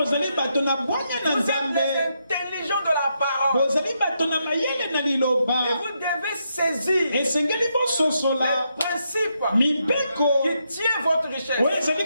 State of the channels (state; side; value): inverted; both; correlation -0.80